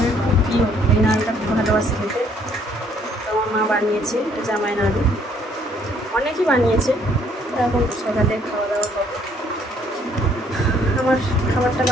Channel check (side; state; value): both; normal; correlation 0.64